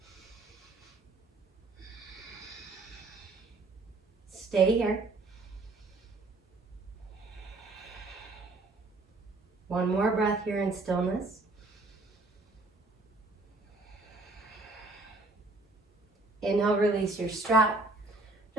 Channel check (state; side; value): quieter; left; 3.2 dB